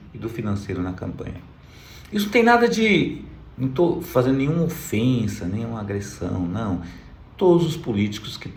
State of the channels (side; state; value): both; identical; correlation 1.00